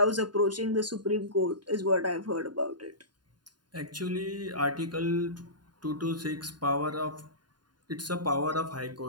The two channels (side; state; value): left; late; 0.70 ms